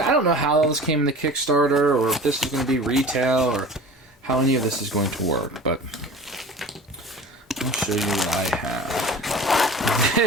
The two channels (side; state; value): both; normal; correlation 0.39